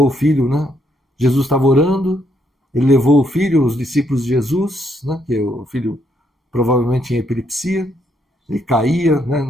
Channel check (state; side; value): normal; both; correlation 0.74